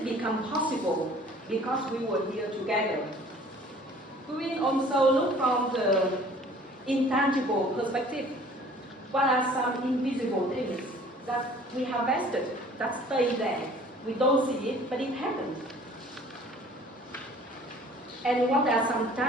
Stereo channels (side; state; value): both; normal; correlation 0.51